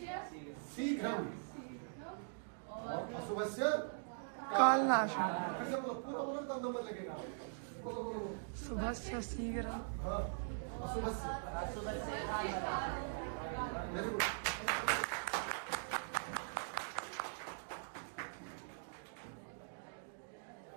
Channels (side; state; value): left; silent; digital silence